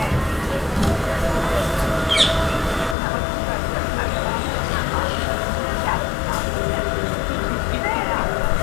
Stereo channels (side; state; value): right; drops out; at 3.0 s